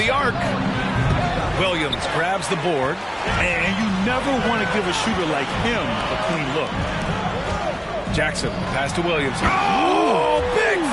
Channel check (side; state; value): both; identical; correlation 1.00